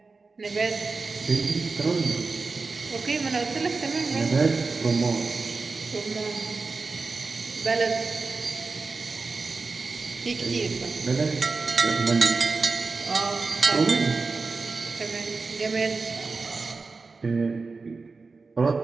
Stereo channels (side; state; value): left; quieter; 4.2 dB